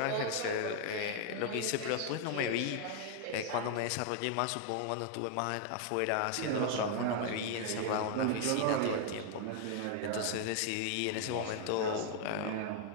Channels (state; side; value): different; both; correlation 0.00